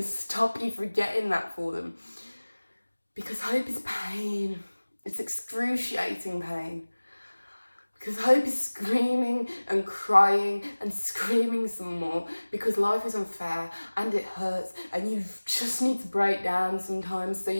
to stop you from getting that for them. Because hope is pain. It's excruciating pain. Because hope is screaming and crying and screaming some more, because life is unfair and it hurts, and you just need to break down sometimes so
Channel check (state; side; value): inverted; both; correlation -1.00